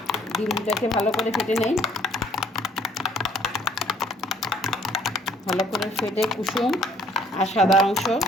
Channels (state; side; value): normal; both; correlation 0.60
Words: ডিমটাকে ভালো করে ফেটে নেই। ভালো করে ফেটে কুসুম আর সাদা অংশ